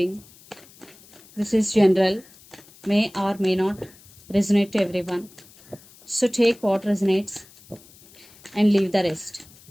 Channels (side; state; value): left; noise; hiss, 25 dB below the sound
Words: This is general, may or may not resonate to everyone. So take what resonates and leave the rest.